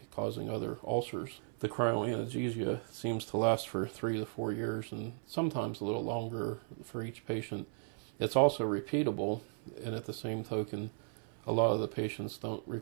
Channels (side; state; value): left; silent; 54 dB below the other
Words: causing other ulcers. The cryoanesthesia seems to last for 3 to 4 years and sometimes a little longer for each patient. It's also repeatable, and at the same token, a lot of the patients don't